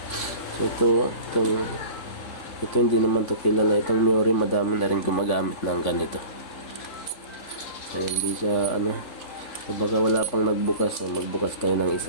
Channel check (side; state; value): right; late; 3.8 ms